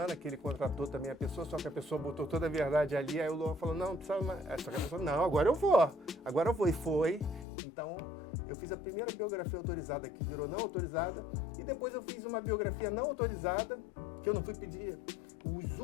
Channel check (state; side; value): drops out; right; at 7.5 s